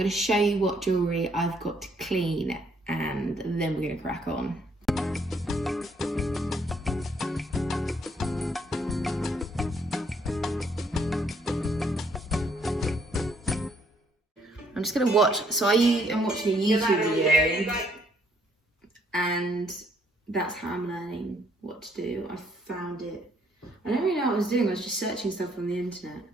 to show you what jewellery I've got to clean, and then we're going to crack on. I'm just going to watch, so I'm watching a YouTube video. And that's how I'm learning what to do. I found it. I don't really know what I was doing. I was just searching stuff on the internet,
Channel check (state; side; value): normal; both; correlation 0.68